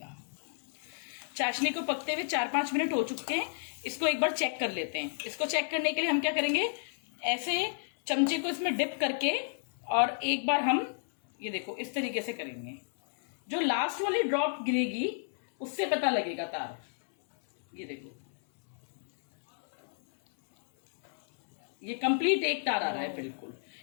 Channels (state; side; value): silent; right; 57 dB below the other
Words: चाशनी को पकते हुए 4-5 मिनट हो चुके हैं। इसको एक बार चेक कर लेते हैं। इसको चेक करने के लिए हम क्या करेंगे, ऐसे चमचे को इसमें डिप करके और एक बार हम ये देखो इस तरीके से करेंगे। जो लास्ट वाली ड्रॉप गिरेगी उससे पता लगेगा तार। ये देखो ये कंप्लीट 1 तार आ रहा है बिल्कुल।